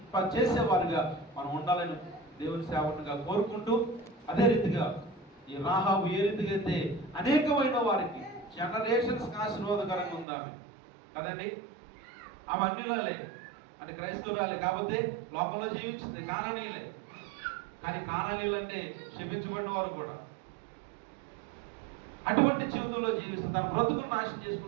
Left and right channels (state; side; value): drops out; left; at 10.2 s